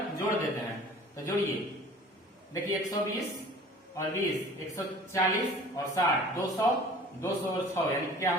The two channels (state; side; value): normal; both; correlation 0.46